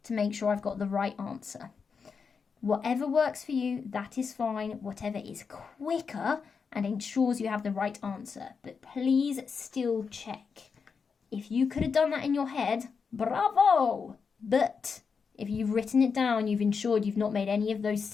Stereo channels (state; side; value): quieter; right; 5.6 dB